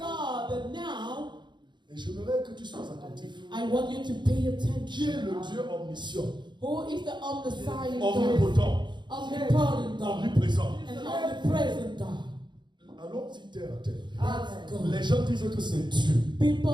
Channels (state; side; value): late; left; 0.22 ms